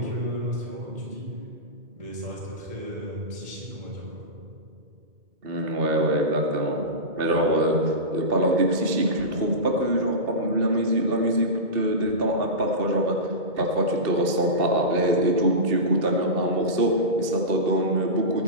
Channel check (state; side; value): late; left; 2.6 ms